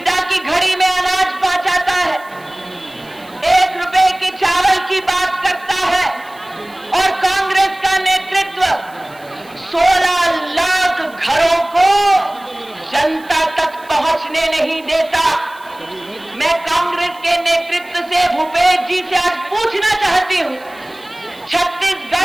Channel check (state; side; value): noise; right; hiss, 26 dB below the sound